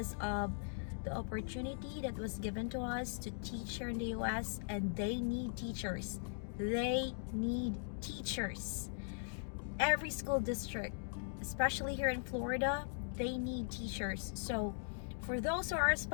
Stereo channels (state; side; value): silent; right; digital silence